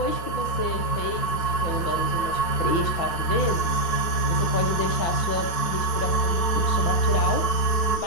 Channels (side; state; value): right; late; 4.7 ms